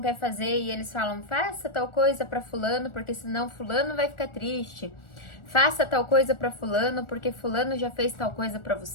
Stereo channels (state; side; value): late; right; 1.4 ms